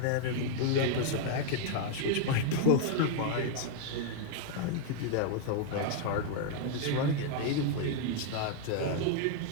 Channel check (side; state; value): both; different; correlation 0.00